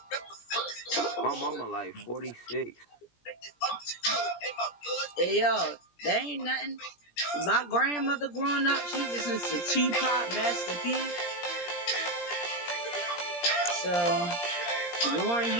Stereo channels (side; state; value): right; late; 17 ms